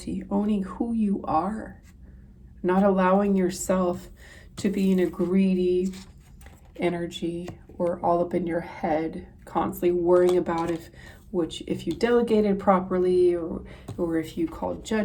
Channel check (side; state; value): both; identical; correlation 1.00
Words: owning who you are, not allowing yourself to be in a greedy energy or all up in your head, constantly worrying about if you delegated properly or if you called